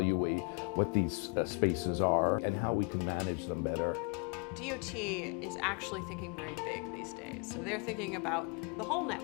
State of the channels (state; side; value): quieter; right; 33.4 dB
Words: what these spaces are and how we can manage them better. DOT is actually thinking very big these days. So they're thinking about the whole